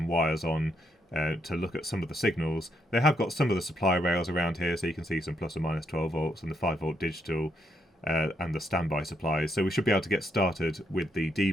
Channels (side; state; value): both; normal; correlation 0.77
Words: wires on to look at some of the signals. They have got some of the supply rails around here, so you can see some plus or minus 12 volts and the 5-volt digital and the standby supplies, so we should be able to get started with the